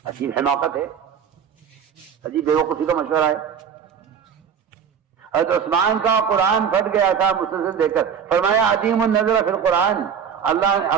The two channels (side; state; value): left; quieter; 7.5 dB